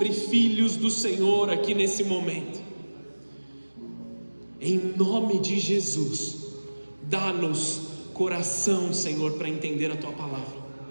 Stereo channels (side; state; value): both; inverted; correlation -1.00